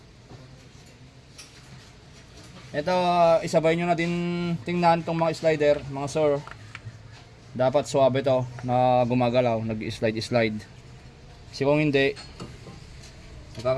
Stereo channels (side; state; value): both; identical; correlation 1.00